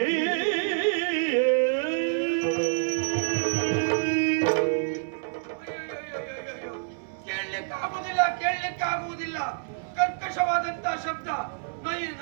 ಕೇಳಲಿಕ್ಕಾಗುವುದಿಲ್ಲ. ಕರ್ಕಶವಾದಂತ ಶಬ್ದ,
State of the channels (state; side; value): silent; left; 60 dB below the other